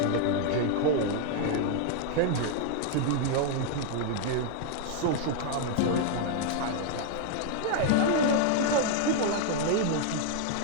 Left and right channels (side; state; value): both; different; correlation 0.00